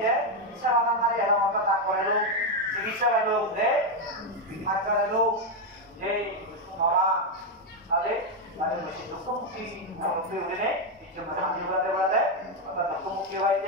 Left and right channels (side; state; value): both; normal; correlation 0.04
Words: দেয় ইচ্ছা মাথা মারি এবং হয়তো তা করে লোক চিকিৎসা লোক দেয় আজকাল লোক যে মামা তাদের তাদের বেশি দুঃখমুখী উঠে কিছু শান্তি বলাতে বলাতে অর্থাৎ দুঃখমুখী হয়